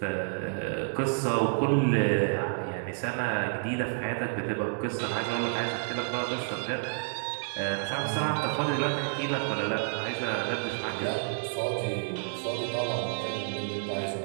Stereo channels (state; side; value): silent; left; digital silence